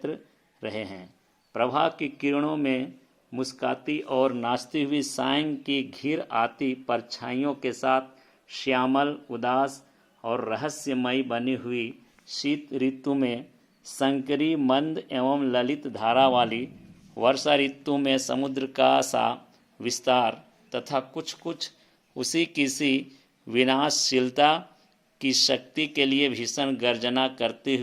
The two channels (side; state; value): both; identical; correlation 1.00